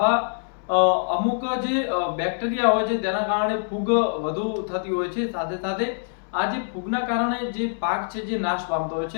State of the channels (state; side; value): silent; right; 62 dB below the other